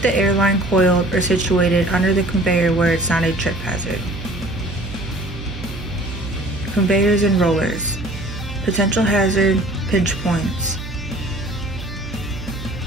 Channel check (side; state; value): right; noise; hum, 11 dB below the sound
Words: the airline coiled or situated under the conveyor where it's not a trip hazard. Conveyors and rollers. Potential hazard, pinch points.